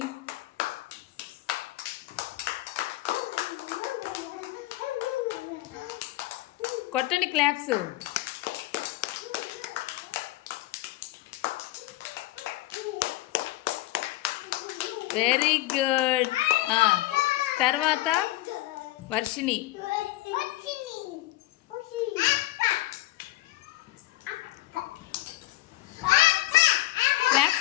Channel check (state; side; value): quieter; right; 17.5 dB